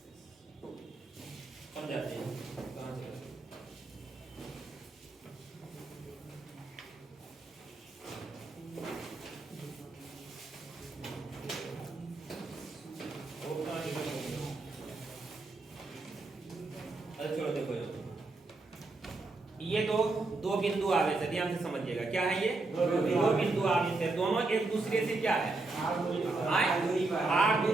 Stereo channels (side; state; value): left; quieter; 3.3 dB